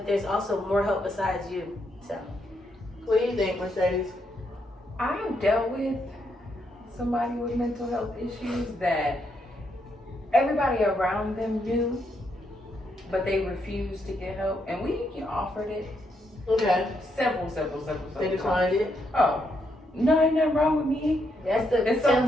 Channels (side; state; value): both; normal; correlation 0.78